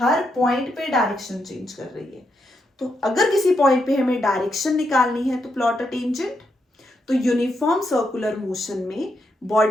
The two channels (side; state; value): both; normal; correlation 0.81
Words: पॉइंट पे डायरेक्शन चेंज कर रही है। तो अगर किसी पॉइंट पे हमें डायरेक्शन निकालनी है तो प्लॉट अ टेंजेंट। तो यूनिफॉर्म सर्कुलर मोशन में